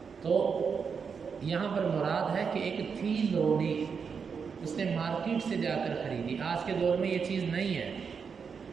تو یہاں پر مراد ہے کہ ایک تھی لونڈی، اس نے مارکیٹ سے جا کر خریدی۔ آج کے دور میں یہ چیز نہیں ہے،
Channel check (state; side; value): quieter; left; 6.0 dB